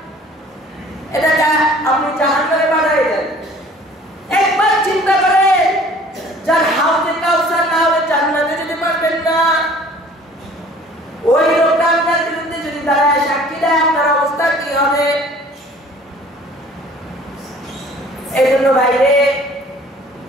এটাকে আপনি জাহান্নামে পাঠাই দেন। একবার চিন্তা করেন, যার হাউজে কাউসার না হলে জান্নাতে যেতে পারবেন না, ওই লোকটা আপনার বিরুদ্ধে যদি দাঁড়ায় সাক্ষী দেয়, আপনার অবস্থা কি হবে? এই জন্য বাইরে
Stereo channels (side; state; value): both; normal; correlation 0.51